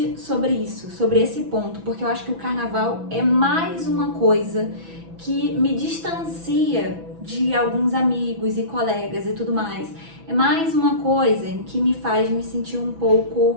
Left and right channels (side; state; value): left; late; 6.0 ms